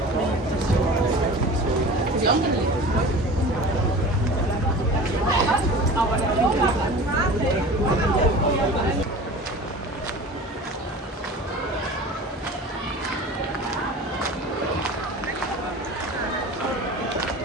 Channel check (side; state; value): both; normal; correlation 0.38